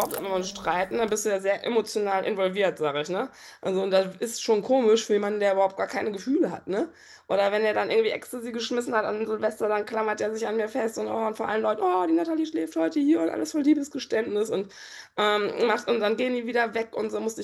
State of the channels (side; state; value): both; identical; correlation 1.00